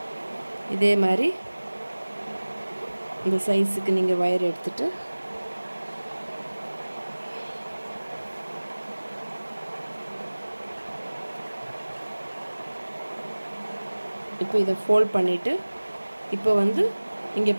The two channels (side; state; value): both; inverted; correlation -1.00